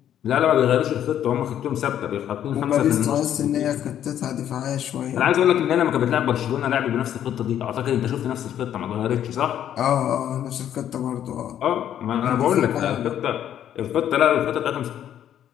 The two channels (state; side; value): quieter; right; 10.5 dB